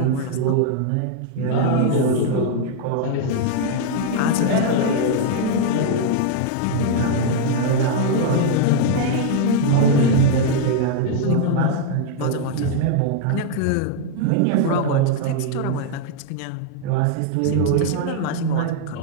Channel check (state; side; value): different; both; correlation -0.01